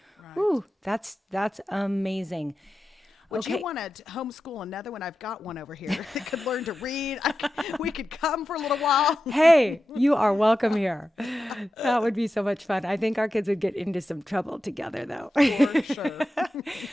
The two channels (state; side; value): normal; both; correlation 0.92